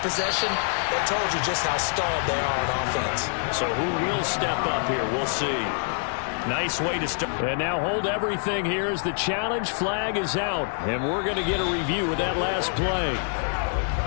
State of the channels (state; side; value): silent; right; 58 dB below the other